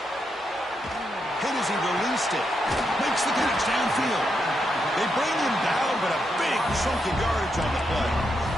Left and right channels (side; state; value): both; normal; correlation 0.82